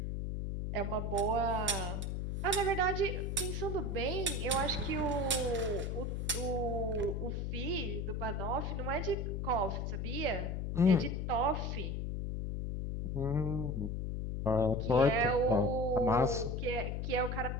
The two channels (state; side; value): noise; left; hum, 2 dB below the sound